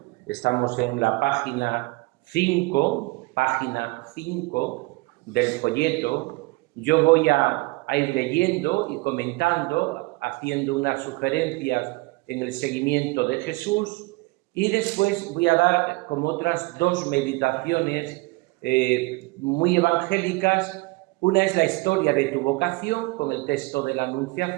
Estamos en la página 5 del folleto. Yo voy a ir leyendo y comentando, haciendo unas sugerencias en el seguimiento de Jesús, y después voy a dar como otras dos meditaciones muy evangélicas. Una es la historia de tu vocación, con el texto de la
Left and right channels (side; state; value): left; quieter; 23.9 dB